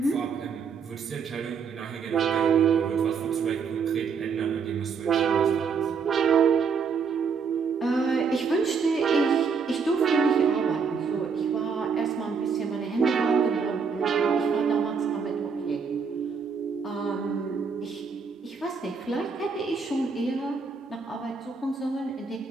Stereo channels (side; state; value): left; quieter; 5.7 dB